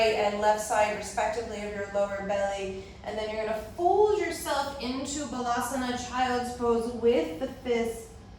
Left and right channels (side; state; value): both; identical; correlation 1.00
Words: and left side respectively of your lower belly, and then you're going to fold yourself into Balasana, child's pose, with the fists